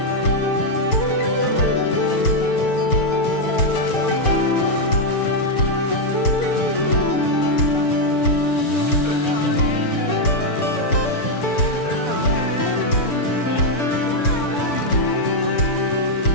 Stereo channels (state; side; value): late; right; 6.9 ms